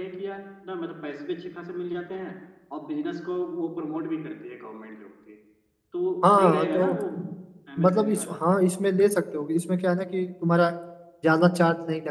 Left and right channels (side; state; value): both; identical; correlation 1.00